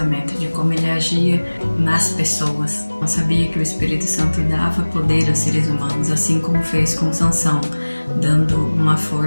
de como ele agia nas pessoas. Não sabia que o Espírito Santo dava poder aos seres humanos, assim como fez com Sansão, dando uma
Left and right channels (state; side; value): inverted; both; correlation -1.00